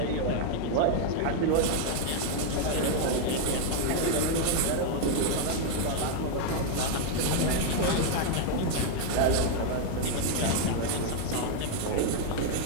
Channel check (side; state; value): both; different; correlation 0.00